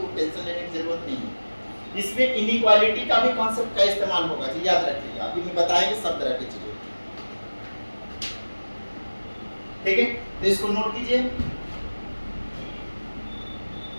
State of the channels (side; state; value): both; inverted; correlation -1.00